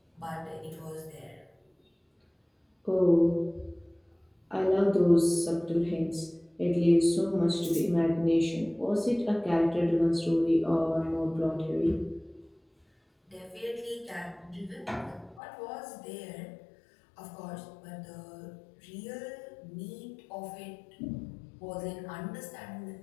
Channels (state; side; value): drops out; right; at 15.4 s